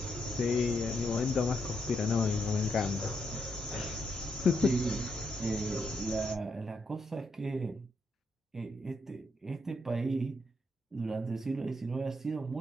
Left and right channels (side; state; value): both; normal; correlation 0.79